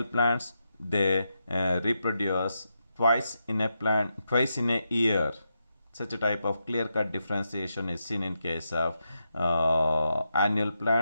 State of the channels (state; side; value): inverted; both; correlation -0.85